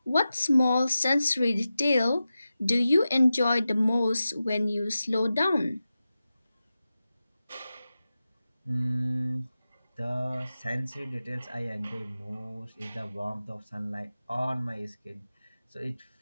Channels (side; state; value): both; inverted; correlation -0.93